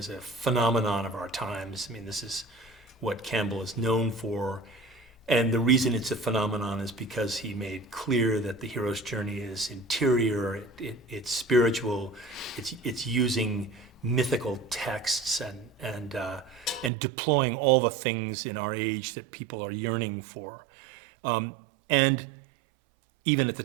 a phenomenon of our times. I mean, this is what Campbell is known for. And the reason it's a phenomenon is because he made clear that the hero's journey is interior, it's spiritual, it's using mythical texts and deploying all the things in our age that people are yearning for. And even at the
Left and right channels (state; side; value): drops out; left; at 16.9 s